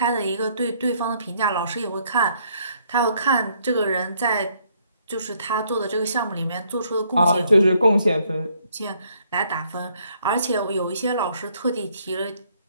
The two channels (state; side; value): inverted; both; correlation -0.68